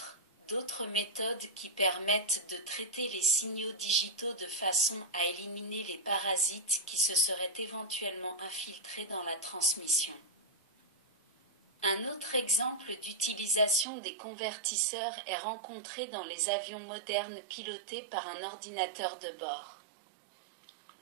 d'autres méthodes qui permettent de traiter les signaux digitaux de façon à éliminer les parasites qui se seraient éventuellement infiltrés dans la transmission. Un autre exemple d'utilisation des convertisseurs est rencontré dans les avions modernes pilotés par un ordinateur de bord.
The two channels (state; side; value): drops out; left; at 13.9 s